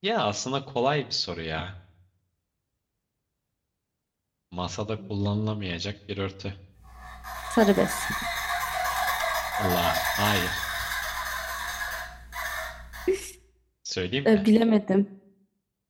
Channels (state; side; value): identical; both; correlation 1.00